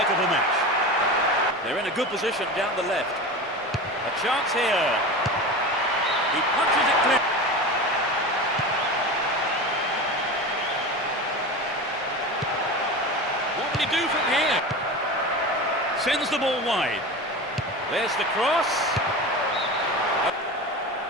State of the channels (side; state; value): both; normal; correlation 0.28